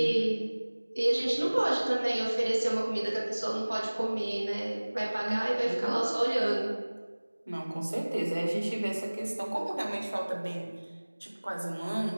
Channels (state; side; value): inverted; both; correlation -1.00